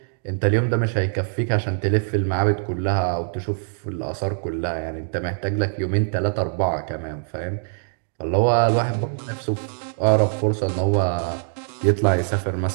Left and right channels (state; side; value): silent; left; digital silence